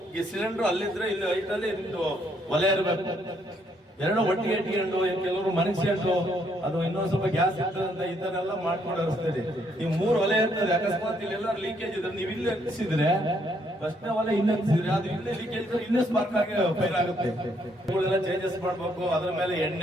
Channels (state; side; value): normal; both; correlation 0.70